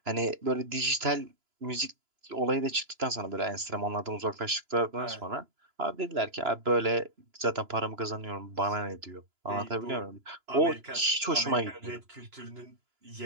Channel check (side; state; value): left; late; 2.9 ms